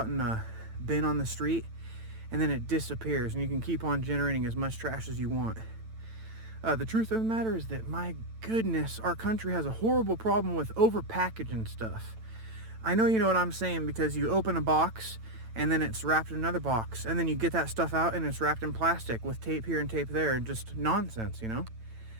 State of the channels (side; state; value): left; late; 9.0 ms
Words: in a bin on the street, and then it disappears, and you can keep on generating as much trash as you want. The truth of the matter is that, my goodness, our country has a horrible problem with over-packaging stuff. I know you know what I'm saying, because you open a box and then it's wrapped in another box, and then you get that stuff out and it's wrapped in plastic with tape here and tape there, and just nonsense, you know?